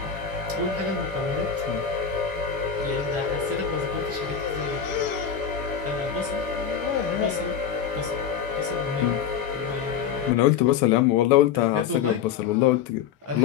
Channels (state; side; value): quieter; right; 7.9 dB